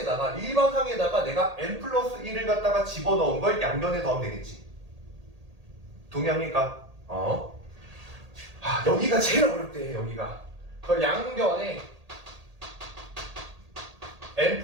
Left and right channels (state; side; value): late; left; 1.8 ms